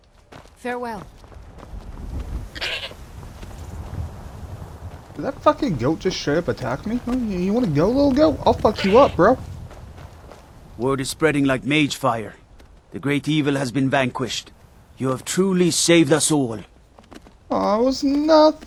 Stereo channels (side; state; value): both; identical; correlation 1.00